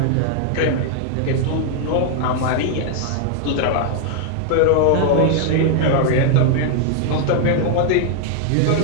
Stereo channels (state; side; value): different; both; correlation 0.00